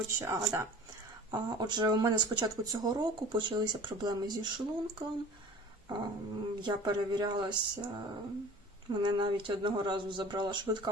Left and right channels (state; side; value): normal; both; correlation 0.42